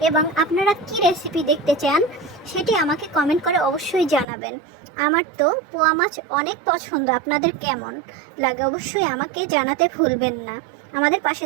এবং আপনারা কি রেসিপি দেখতে চান সেটি আমাকে কমেন্ট করে অবশ্যই জানাবেন। আমার তো পোয়া মাছ অনেক পছন্দ, আপনাদের কেমন লাগে অবশ্যই আমাকে জানাতে ভুলবেন না। আমাদের পাশে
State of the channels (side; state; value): left; drops out; at 4.2 s